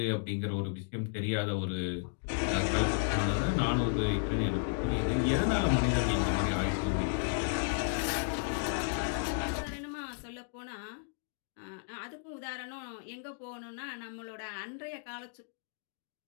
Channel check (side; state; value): right; silent; digital silence